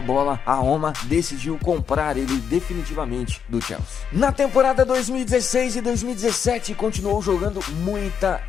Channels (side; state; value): right; quieter; 7.4 dB